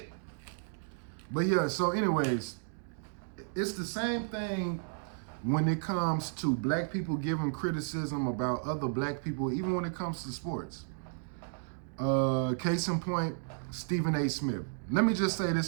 But yeah, so anyways, it's the same thing when it comes to black people giving criticism about other black people, even when it comes to sports. Case in point, Stephen A. Smith. Let me just say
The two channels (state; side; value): silent; left; digital silence